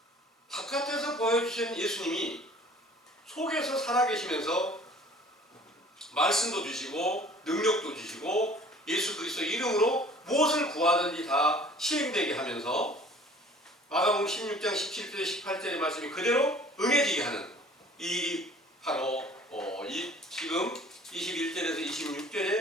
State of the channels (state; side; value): normal; both; correlation 0.50